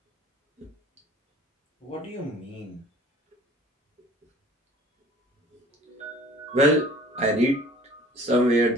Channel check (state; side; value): normal; both; correlation 0.49